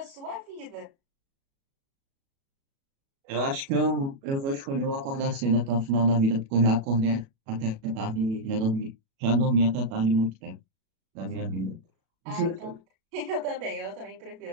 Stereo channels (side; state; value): left; late; 36 ms